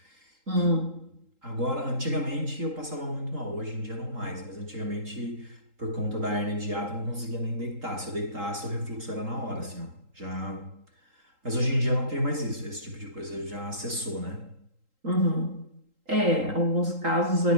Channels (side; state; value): left; late; 3.8 ms